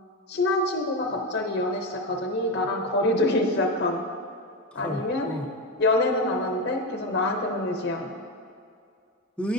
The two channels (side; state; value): both; normal; correlation 0.14